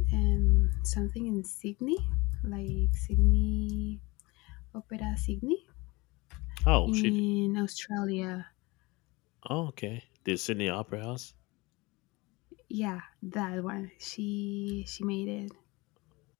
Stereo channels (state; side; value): quieter; right; 23.8 dB